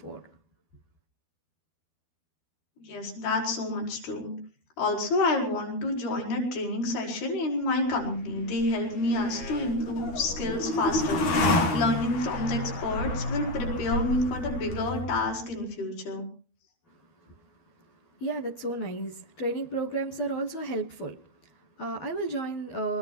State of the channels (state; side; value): late; right; 12 ms